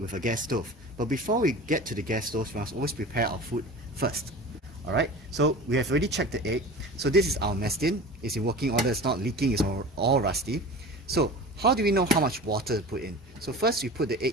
a gas stove. But before we get to the gas stove, we must always prepare our food first. Alright, so we have already checked the egg. So this is our mess tin. It's in working order, it's not leaking, it's all rusty. So how do we know how much water to put in? So first we put the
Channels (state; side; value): normal; both; correlation 0.35